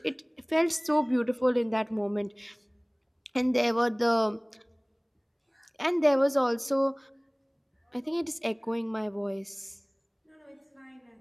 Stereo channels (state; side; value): identical; both; correlation 1.00